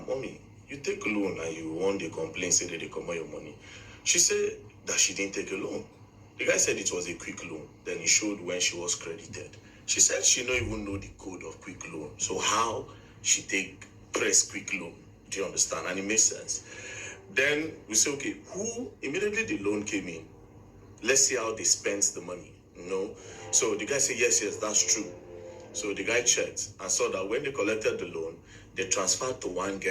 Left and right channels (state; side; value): identical; both; correlation 1.00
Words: Mommy, you take a loan and you want the complaint, say that they come out your money. She said that she didn't take a loan. The guy said it was a quick loan. Then he showed when she was credited. She said she don't even know the code of quick loan. So how she press quick loan? Do you understand? And it makes sense. Then we say, okay, immediately the loan came in. Let's see how they spent the money, So the guy said, yes, that's true. So the guy checked and saw that when they collected the loan, they transferred to one